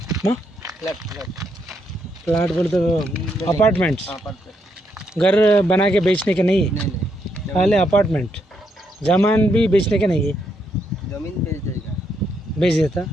प्लाट बोल तो अपार्टमेंट्स घर बना के बेचने के नहीं, पहले अपार्टमेंट जमीन भी बेचने के नहीं है। जमीन बेच देता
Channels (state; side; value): normal; both; correlation 0.77